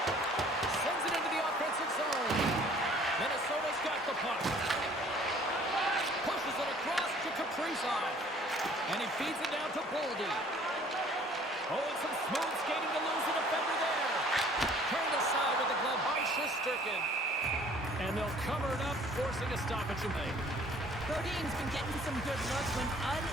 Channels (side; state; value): both; normal; correlation 0.55